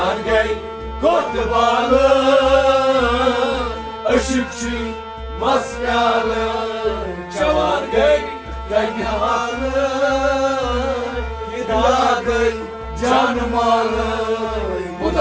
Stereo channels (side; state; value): both; identical; correlation 1.00